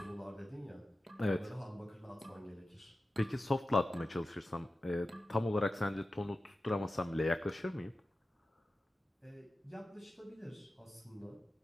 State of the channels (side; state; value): both; normal; correlation 0.94